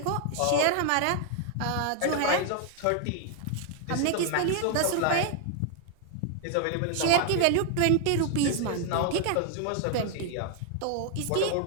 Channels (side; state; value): both; different; correlation 0.00